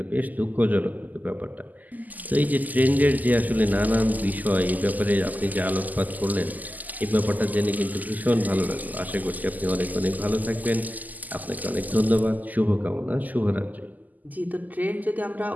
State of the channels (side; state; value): left; late; 0.081 ms